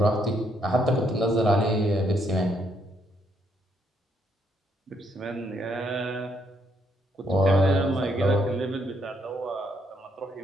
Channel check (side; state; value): both; normal; correlation 0.73